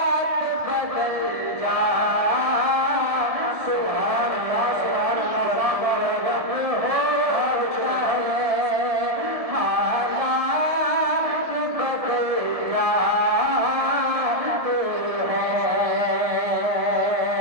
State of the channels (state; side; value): late; left; 1.7 ms